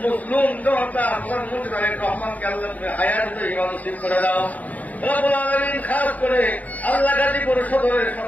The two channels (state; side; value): late; right; 0.076 ms